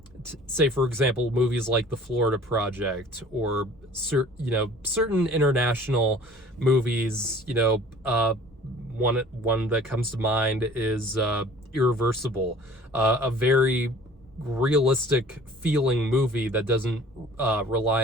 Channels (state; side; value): normal; both; correlation 0.49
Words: say, for example, movies like The Florida Project, or certain international movies. One that comes to mind is Irreversible, a very realistic feeling movie that doesn't